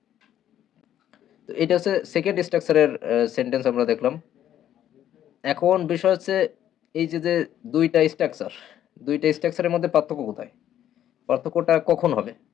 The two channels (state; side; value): quieter; right; 11.1 dB